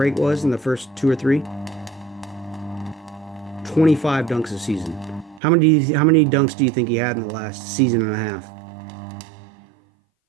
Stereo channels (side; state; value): left; drops out; at 5.4 s